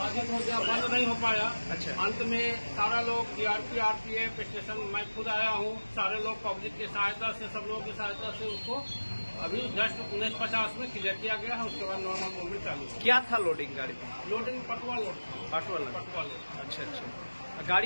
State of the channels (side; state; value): both; inverted; correlation -1.00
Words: हो गया, बंद नहीं हो पाया। अच्छा। अंत में सारा लोग टीआरपी, आरपीएफ स्टेशन, मैं खुद आया हूँ, सारे लोग पब्लिक की सहायता से, सब लोगों की सहायता से उसको अभी जस्ट 1950 में क्लियर किया गया है। उसके बाद नॉर्मल मूवमेंट चालू। क्या था लोडिंग गाड़ी में? Loading Patwa load. Patwa Patwa load. अच्छा अच्छा।